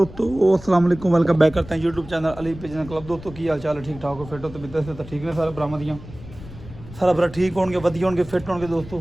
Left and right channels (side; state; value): left; noise; rumble, 16 dB below the sound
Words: अस्सलाम वालेकुम, वेलकम बैक करते हैं YouTube channel Ali pigeon club. दोस्तों की हाल चाल है? ठीक ठाक हो, फिट हो? तो बिदत से तो ठीक ने सारे बरामदियाँ सारा बरा ठीक होंगे, वधिया होंगे, फिट होंगे दोस्तों।